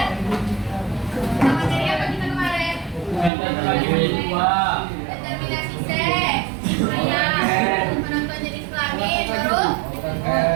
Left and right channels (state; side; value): drops out; left; at 3.3 s